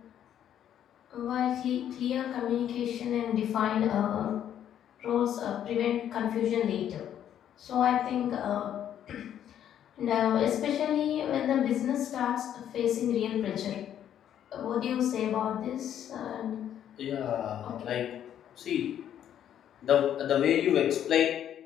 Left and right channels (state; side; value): quieter; right; 10.2 dB